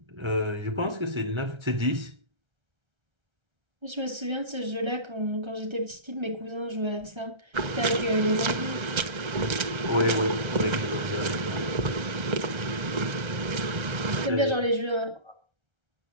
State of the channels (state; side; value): late; left; 1.3 ms